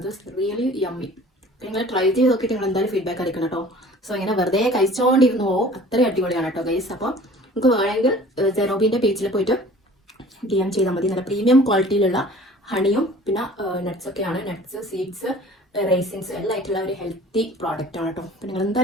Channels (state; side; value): normal; both; correlation 0.47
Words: Really yummy. നിങ്ങൾ ട്രൈ ചെയ്ത് നോക്കിയിട്ട് നിങ്ങൾ എന്തായാലും ഫീഡ്ബാക്ക് അറിയിക്കണം കേട്ടോ. സോ ഇങ്ങനെ വെറുതെ കഴിച്ചുകൊണ്ടിരുന്നു അത്രയും അടിപൊളിയാണ് കേട്ടോ ഗൈസ്. അപ്പോൾ നിങ്ങൾക്ക് വേണമെങ്കിൽ സെറോബിൻ്റെ പേജിൽ പോയിട്ട് DM ചെയ്താൽ മതി. നല്ല പ്രീമിയം ക്വാളിറ്റിയിലുള്ള ഹണിയും പിന്നെ നട്ട്സൊക്കെയാണ്. നട്ട്സ്, സീഡ്സ്, റൈസിൻസ് എല്ലാം ആയിട്ടുള്ള ഒരു ഹെൽത്തി പ്രോഡക്റ്റ് ആണ് കേട്ടോ. അപ്പോൾ നിങ്ങൾ